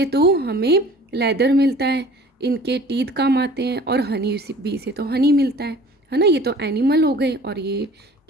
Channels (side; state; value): both; normal; correlation 0.47